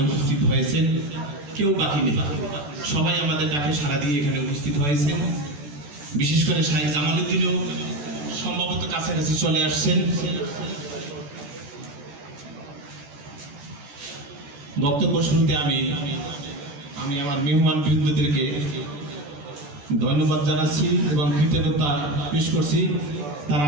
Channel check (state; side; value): late; left; 14 ms